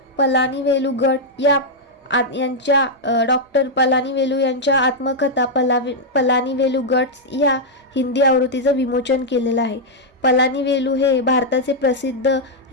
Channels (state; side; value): normal; both; correlation -0.04